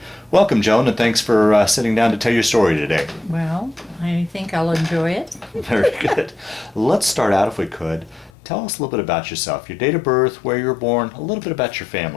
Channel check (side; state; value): right; drops out; at 8.3 s